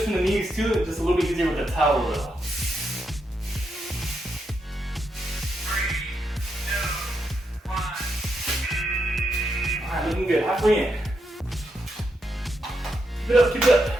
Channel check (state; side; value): normal; both; correlation 0.82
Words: from the knees too, it's just a little bit easier with the towel though. Alright, looking good. Halfway in. Keep it up, keep it up.